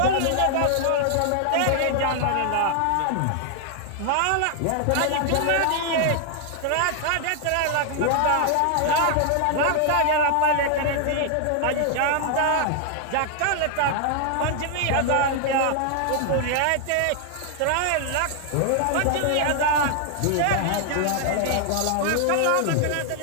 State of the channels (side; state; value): both; different; correlation 0.00